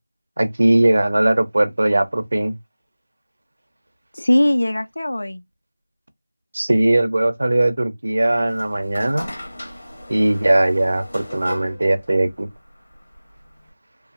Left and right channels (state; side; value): inverted; both; correlation -0.99